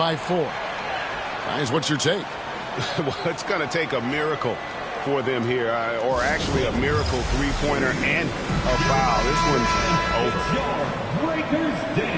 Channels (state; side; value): identical; both; correlation 1.00